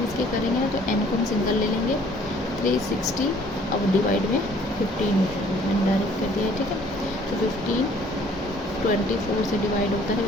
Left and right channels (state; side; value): normal; both; correlation 0.57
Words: इसके करेंगे ना तो n को हम सिंगल ले लेंगे, 360 अब डिवाइड में 15 हो जाएगा, मैंने डायरेक्ट कर दिया है, ठीक है। तो 15 24 से डिवाइड होता है,